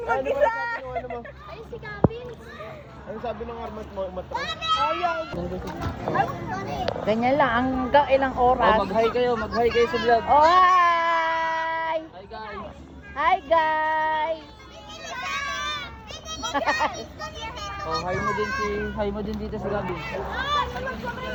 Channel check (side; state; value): both; identical; correlation 1.00